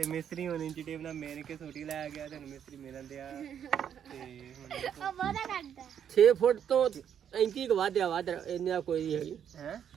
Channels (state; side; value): quieter; left; 8.8 dB